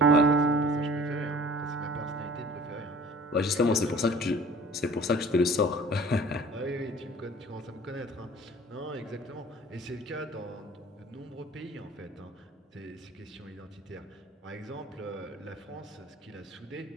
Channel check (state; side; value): normal; both; correlation 0.47